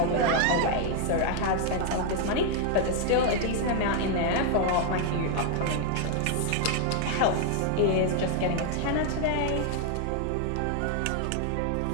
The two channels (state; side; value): different; both; correlation 0.00